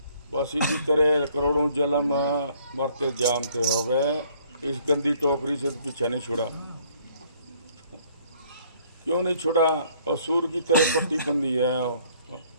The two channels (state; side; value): inverted; both; correlation -0.62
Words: बस इसी तरह करोड़ों जन्म मरते जामते हो गए, इस गंदी टोकरी से तो पीछा नहीं छुड़ा। क्यों नहीं छुड़ा? और सूर की तरह पट्टी बंदी है,